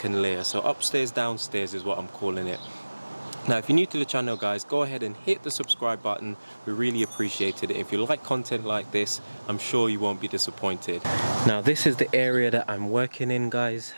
layer. So upstairs, downstairs is what I'm calling it. Now if you're new to the channel guys, go ahead and hit the subscribe button. We really appreciate it. If you like content like this, I'm sure you won't be disappointed. Now this is the area that I'm working in guys.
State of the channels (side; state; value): both; inverted; correlation -1.00